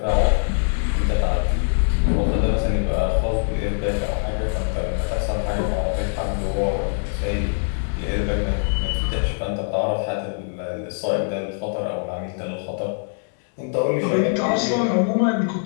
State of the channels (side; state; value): right; silent; digital silence